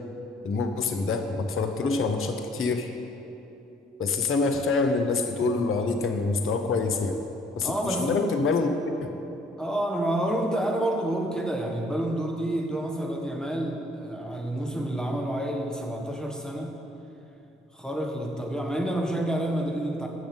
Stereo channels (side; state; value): both; normal; correlation 0.62